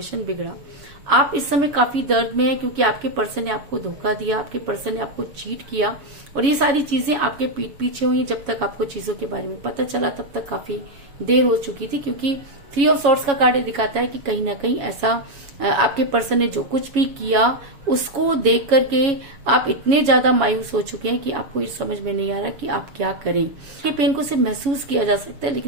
बिगड़ा। आप इस समय काफी दर्द में हैं क्योंकि आपके पर्सन ने आपको धोखा दिया, आपके पर्सन ने आपको चीट किया और ये सारी चीजें आपके पीठ पीछे हुई। जब तक आपको चीजों के बारे में पता चला तब तक काफी देर हो चुकी थी क्योंकि थ्री ऑफ सॉर्ड्स का कार्ड दिखाता है कि कहीं ना कहीं ऐसा आपके पर्सन ने जो कुछ भी किया उसको देख करके आप इतने ज्यादा मायूस हो चुके हैं कि आपको ये समझ में नहीं आ रहा कि आप क्या करें। ये पेन को सिर्फ महसूस किया जा सकता है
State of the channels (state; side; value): late; left; 7.2 ms